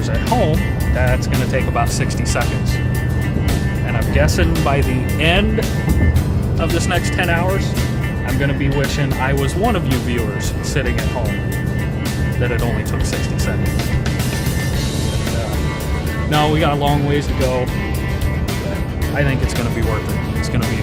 at home, that's going to take about 60 seconds. And I'm guessing by the end of this next 10 hours, I'm going to be wishing I was one of you viewers sitting at home, that it only took 60 seconds. But, no, we got a long ways to go. I think it's going to be worth it. It's going to be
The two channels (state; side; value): identical; both; correlation 1.00